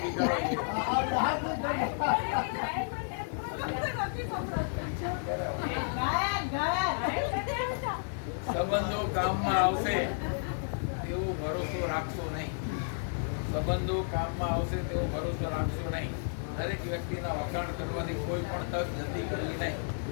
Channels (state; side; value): silent; right; digital silence